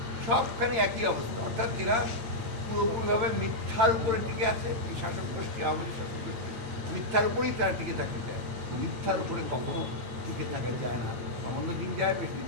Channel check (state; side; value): late; left; 8.8 ms